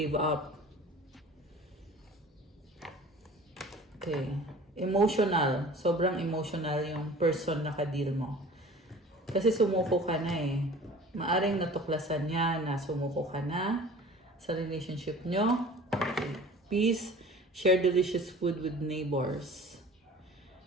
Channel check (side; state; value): both; normal; correlation 0.44